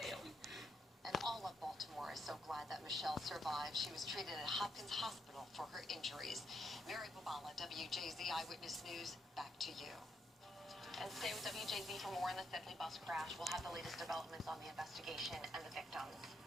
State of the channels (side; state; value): both; normal; correlation 0.78